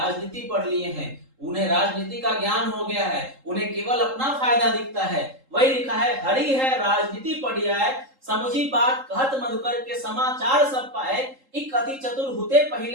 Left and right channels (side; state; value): left; late; 3.8 ms